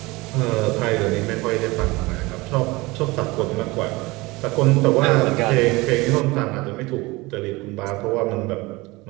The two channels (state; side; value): quieter; left; 22.6 dB